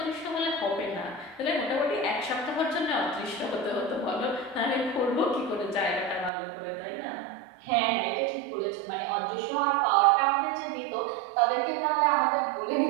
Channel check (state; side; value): drops out; left; at 6.3 s